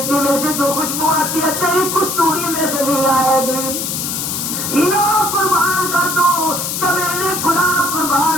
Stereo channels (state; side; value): noise; left; hiss, 3 dB below the sound